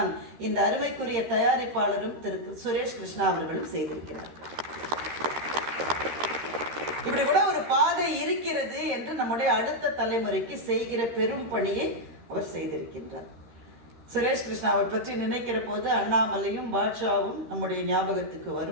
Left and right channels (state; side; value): late; left; 13 ms